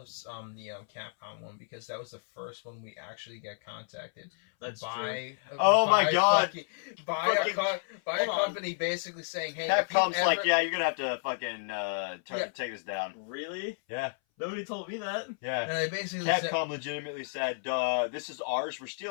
one because that was the first one we actually got contacted That's true. by. Oh my by God. fucking- by Fucking- a Hold on. company basically saying, "Hey, if you Capcom's like, ever- yeah, you're gonna have to fucking Yeah. take this down. Really? Yeah, Nobody told me that. yeah. And they basically said, Capcom legitimately said, "This is ours. We're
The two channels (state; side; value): silent; right; 57 dB below the other